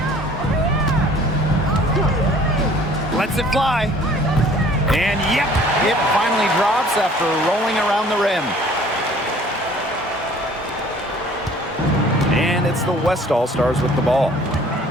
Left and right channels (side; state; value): both; normal; correlation 0.53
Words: Lets it fly. And yep, it finally drops after rolling around the rim. And it's the West All-Stars with the ball.